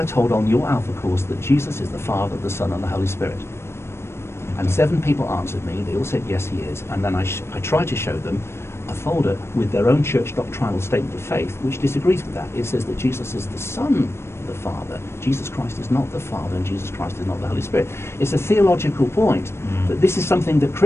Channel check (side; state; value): right; late; 0.12 ms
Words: told on your Alpha course that Jesus is the Father, the Son, and the Holy Spirit? And 7 people answered me. They all said, yes, he is. And then I tried to show them a folder with their own church doctrinal statement of faith, which disagrees with that. It says that Jesus is the Son of the Father. Jesus Christ is not the Father, and Jesus Christ is not the Holy Spirit. It's a theological point that this is something that